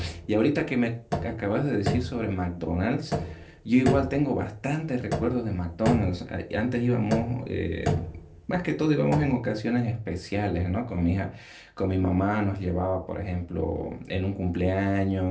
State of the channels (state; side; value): identical; both; correlation 1.00